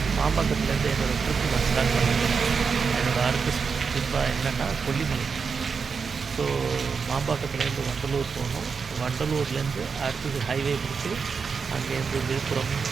மாம்பக்கத்துலேருந்து என்னோடய ட்ரிப்பு நான் ஸ்டார்ட் பண்ணிட்டேன். என்னோடய அடுத்த ட்ரிப்பாக என்னென்னா கொல்லிமலை. ஸோ மாம்பாக்கத்துலேருந்து வண்டலூர் போகணும். வண்டலூர்லேருந்து அடுத்தது ஹைவே பிடிச்சி அங்கேருந்து விழுப்புரம்,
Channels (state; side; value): quieter; left; 5.6 dB